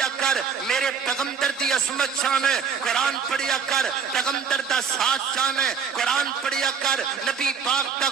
کر، میرے پیغمبر دی عظمت چاہنے، قرآن پڑھیا کر، پیغمبر دا ساتھ چاہنے، قرآن پڑھیا کر، نبی پاک دا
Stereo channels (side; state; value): left; quieter; 6.4 dB